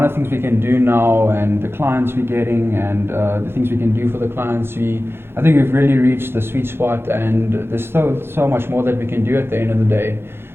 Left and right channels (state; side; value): late; left; 0.11 ms